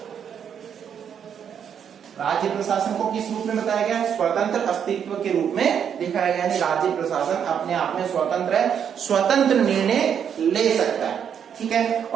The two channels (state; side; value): quieter; left; 8.1 dB